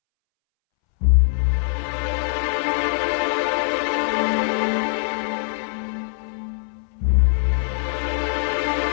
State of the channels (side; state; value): right; silent; 64 dB below the other